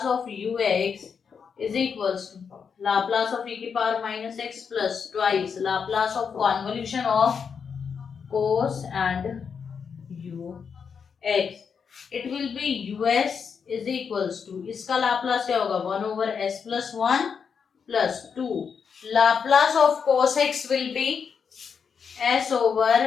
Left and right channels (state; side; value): quieter; right; 6.4 dB